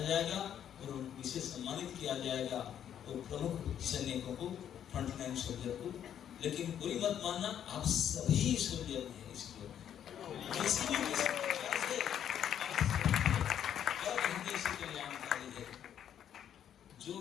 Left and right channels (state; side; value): quieter; right; 9.7 dB